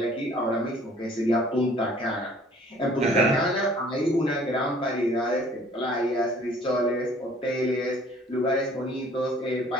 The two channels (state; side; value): normal; both; correlation 0.54